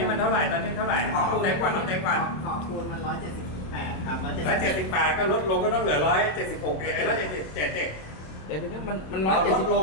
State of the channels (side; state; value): right; late; 27 ms